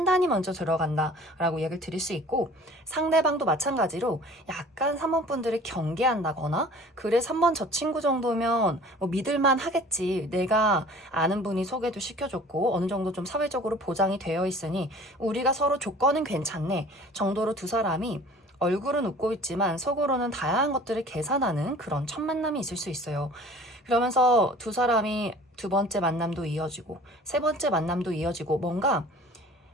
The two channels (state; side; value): normal; both; correlation 0.47